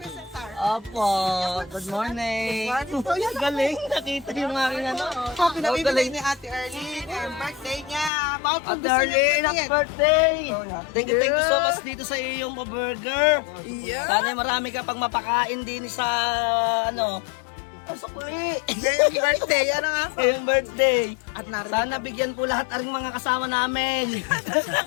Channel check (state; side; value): drops out; right; at 8.1 s